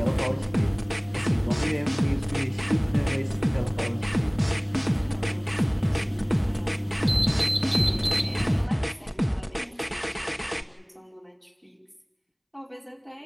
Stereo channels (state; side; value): identical; both; correlation 1.00